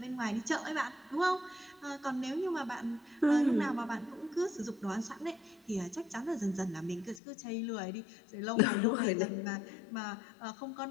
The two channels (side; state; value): right; drops out; at 7.2 s